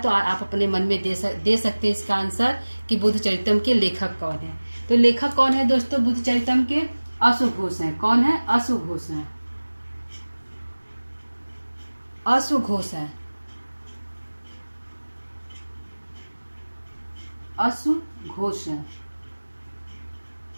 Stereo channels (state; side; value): inverted; both; correlation -1.00